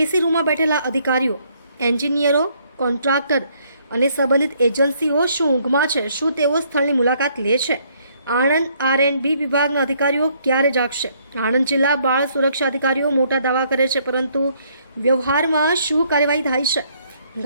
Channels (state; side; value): inverted; both; correlation -0.67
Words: રૂમમાં બેઠેલા અધિકારીઓ, એન્જિનિયરો, કોન્ટ્રાક્ટર અને સંબંધિત એજન્સીઓ શું ઊંઘમાં છે? શું તેઓ સ્થળની મુલાકાત લે છે? આણંદ R&B વિભાગના અધિકારીઓ ક્યારે જાગશે? આણંદ જિલ્લા બાળ સુરક્ષા અધિકારીઓ મોટા દાવા કરે છે, પરંતુ વ્યવહારમાં શું કાર્યવાહી થાય છે?